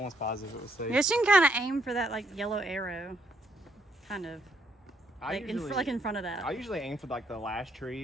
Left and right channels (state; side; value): normal; both; correlation 0.73